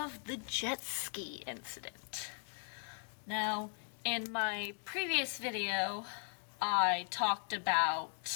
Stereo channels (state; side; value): silent; right; 52 dB below the other